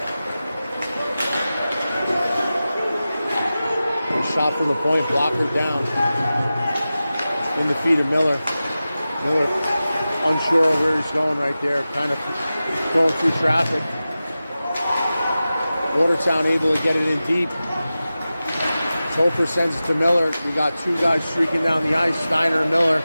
Shot from the point, blocker down. In the feet of Miller. Miller unsure of where he's going right there, kind of going through traffic. Watertown able to get it in deep. Topher sends it to Miller. We got two guys streaking down the ice, Steiner and Miller.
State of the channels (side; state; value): both; inverted; correlation -0.95